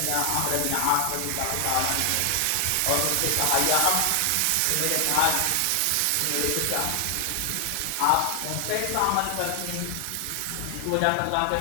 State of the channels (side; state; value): both; different; correlation 0.00